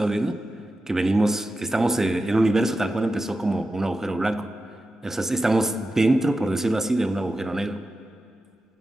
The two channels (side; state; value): both; normal; correlation 0.92